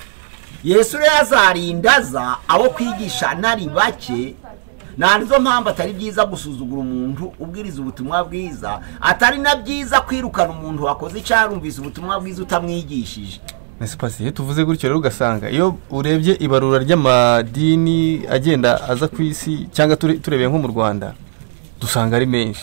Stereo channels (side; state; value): left; silent; digital silence